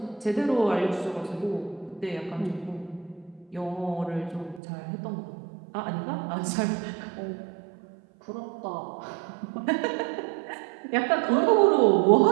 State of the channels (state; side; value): drops out; left; at 4.6 s